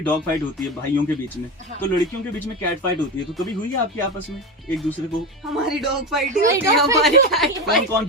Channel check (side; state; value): both; normal; correlation 0.20